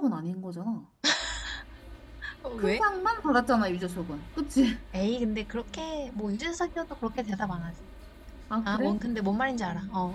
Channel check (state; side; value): identical; both; correlation 1.00